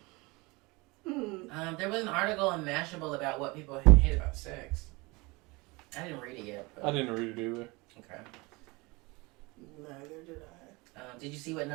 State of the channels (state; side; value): quieter; left; 24.9 dB